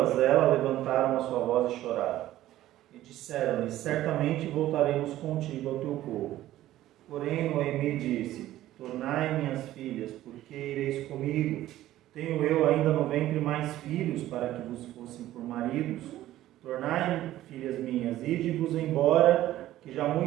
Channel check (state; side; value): quieter; left; 14.3 dB